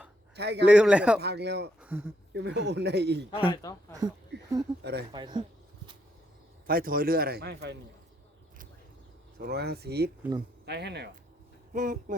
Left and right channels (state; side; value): normal; both; correlation 0.75